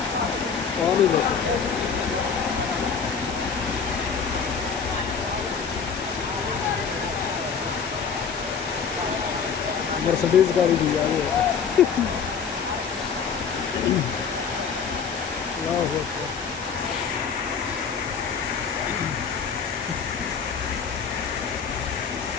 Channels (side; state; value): right; quieter; 6.3 dB